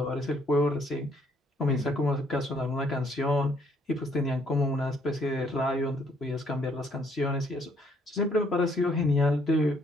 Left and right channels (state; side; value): normal; both; correlation 0.67